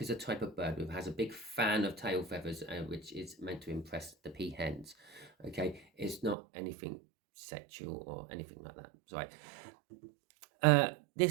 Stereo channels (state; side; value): drops out; left; at 6.4 s